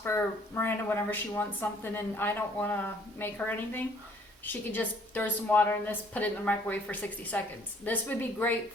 for Miranda whenever she wants something and I don't want to make her anything. She could just throw some water in this, put it in the microwave for 60 seconds. This would be great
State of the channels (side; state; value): both; normal; correlation 0.60